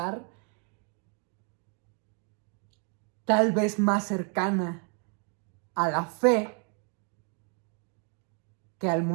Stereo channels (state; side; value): quieter; left; 38.9 dB